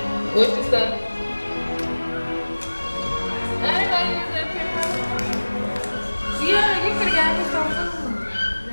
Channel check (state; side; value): inverted; both; correlation -1.00